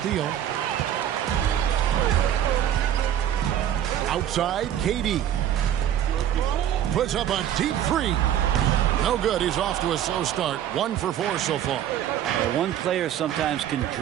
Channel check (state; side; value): quieter; left; 10.7 dB